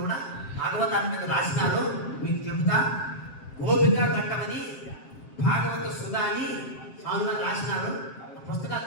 కూడా భాగవతాన్ని మీద రాసినారు. మీకు చెబుతా, గోపికా ఘట్టమని భాగవత సుధా అని స్వామిగా రాసినారు. పుస్తకాలు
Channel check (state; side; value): late; right; 7.5 ms